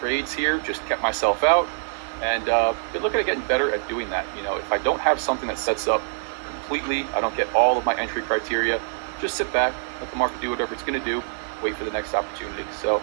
trades here, just kept myself out. And been looking at getting better at doing that. You know, if I don't have something that sets up completely, I don't get all of my entry criteria, just sit back, let the market do whatever it's going to do, wait for the next opportunity.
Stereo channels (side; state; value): left; silent; digital silence